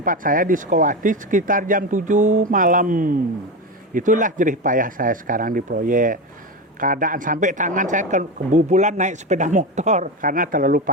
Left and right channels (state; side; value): normal; both; correlation 0.19